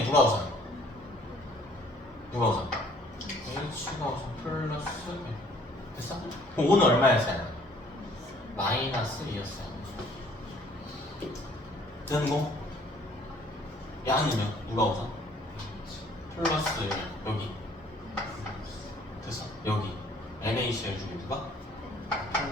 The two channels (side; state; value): both; normal; correlation 0.58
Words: 누가 우선? 누가 우선? H가 우선 플러스 1. 됐어? 그럼 O는 얼마였어요? 마이너스 2였어요. 되는 거? 양은요? 누가 우선? 플러스 1. 여기. 됐어? 여기. NaCl 중에 누가?